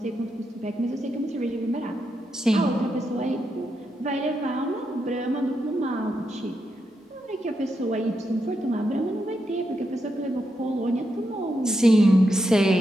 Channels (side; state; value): both; normal; correlation 0.84